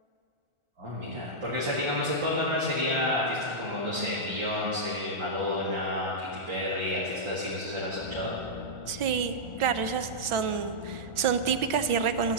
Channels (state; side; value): late; left; 1.4 ms